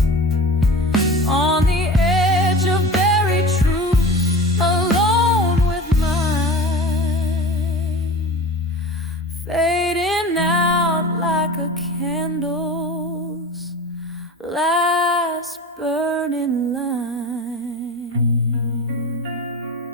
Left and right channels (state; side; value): normal; both; correlation 0.34